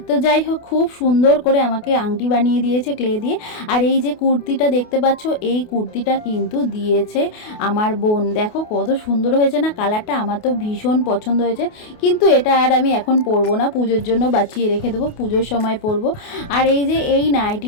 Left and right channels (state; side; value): late; right; 28 ms